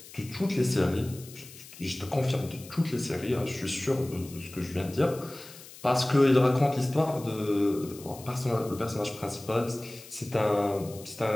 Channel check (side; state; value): left; noise; hiss, 18 dB below the sound